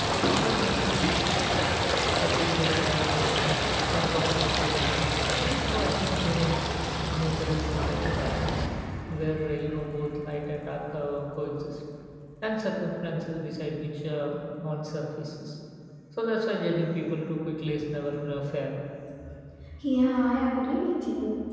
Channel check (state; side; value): identical; both; correlation 1.00